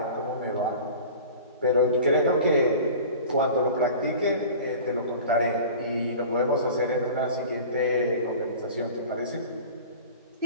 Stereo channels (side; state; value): both; inverted; correlation -0.40